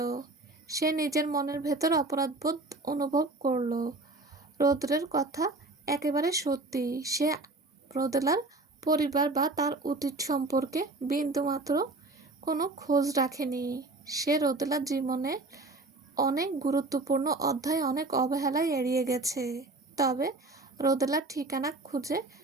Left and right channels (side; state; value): left; quieter; 3.1 dB